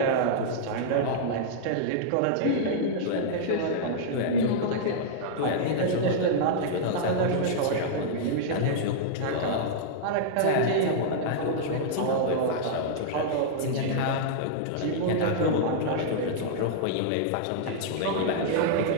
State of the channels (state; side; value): different; both; correlation -0.02